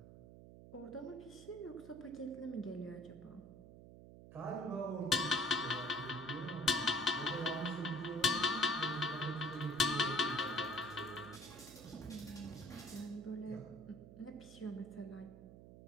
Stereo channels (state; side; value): noise; right; hum, 16 dB below the sound